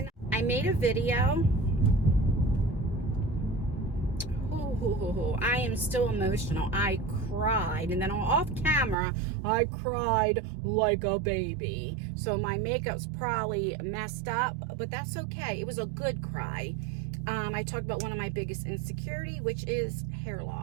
I made a video. I am still emotional. I cried, and then off camera I cried like a baby. So my makeup's probably messed up, but that's okay. It was a good cry. I talked about one of my biggest insecurity, which is hair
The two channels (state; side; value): drops out; left; at 9.0 s